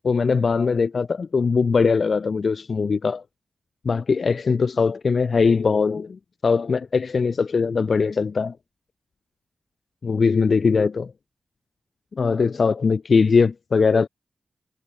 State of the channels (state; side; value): quieter; right; 4.7 dB